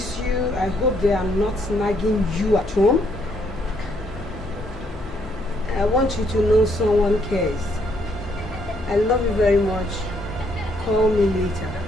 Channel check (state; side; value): normal; both; correlation 0.71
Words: you. I hope they are not nagging you at home. I want you to know someone cares. I love you very much. Call me later.